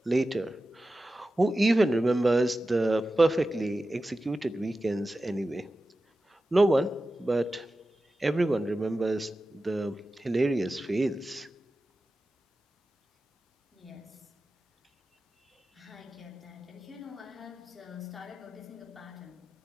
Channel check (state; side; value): normal; both; correlation 0.94